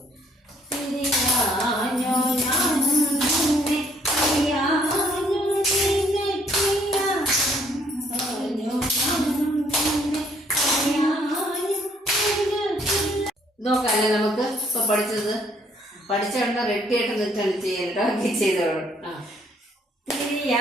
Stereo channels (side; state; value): both; normal; correlation 0.65